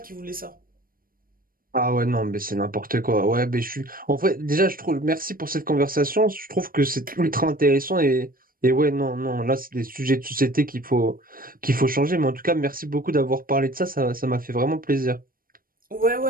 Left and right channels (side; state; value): left; late; 0.41 ms